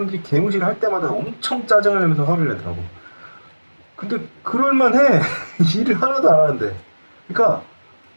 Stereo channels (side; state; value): both; inverted; correlation -1.00